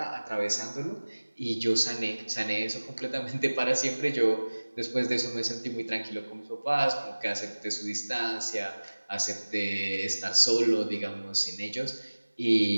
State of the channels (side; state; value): both; inverted; correlation -1.00